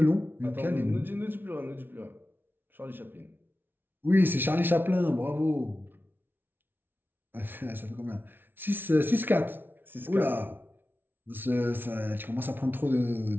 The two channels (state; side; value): late; left; 0.10 ms